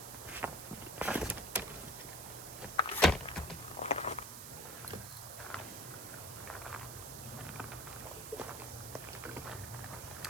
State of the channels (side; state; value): right; noise; hiss, 9 dB below the sound